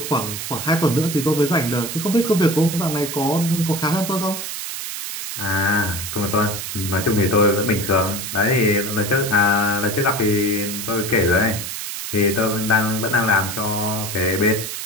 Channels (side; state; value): right; noise; hiss, 6 dB below the sound